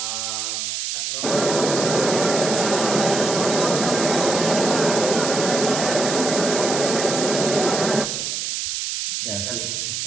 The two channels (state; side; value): noise; right; hiss, 3 dB below the sound